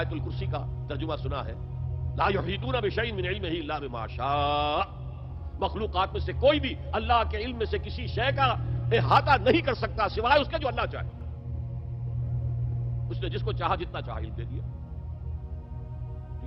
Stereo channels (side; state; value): both; identical; correlation 1.00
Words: الکرسی کا ترجمہ سنا ہے، لا یحیطون بشیء من علمہ الا بما شاء. مخلوقات میں سے کوئی بھی اللہ کے علم میں سے کسی شے کا احاطہ نہیں کر سکتا سوائے اس کے جو اللہ چاہے. اس نے جس کو چاہا جتنا چاہا علم دے دیا.